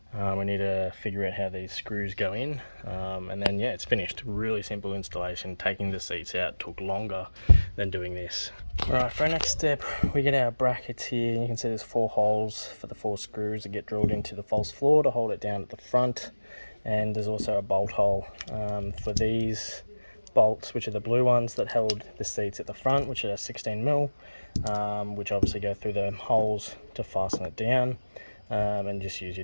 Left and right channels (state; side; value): inverted; both; correlation -1.00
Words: We need to figure out how these screws go in, and then yeah, it's finished. Really simple installation. Taking the seats out took longer than doing this. Alright, for our next step, we get our brackets here. You can see there's 4 holes for the 4 screws that get drilled into the false floor to hold it down at the front, and there's also a bolt hole for these bolts, which are the blue ones that held the seats at the front, which are 16mm, which obviously go through the holes to fasten it down. And just use